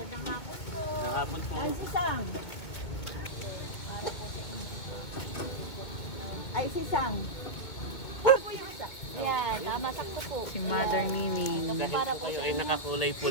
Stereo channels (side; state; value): right; late; 2.2 ms